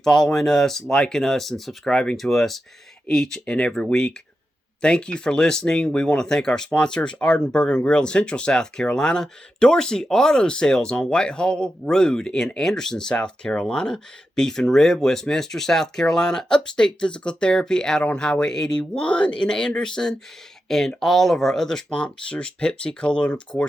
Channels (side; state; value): both; normal; correlation 0.89